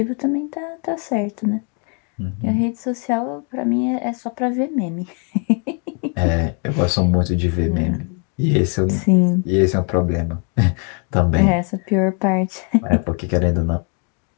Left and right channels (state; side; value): quieter; right; 38.1 dB